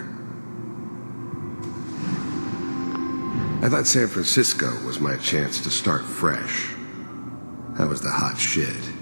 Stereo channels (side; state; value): both; inverted; correlation -1.00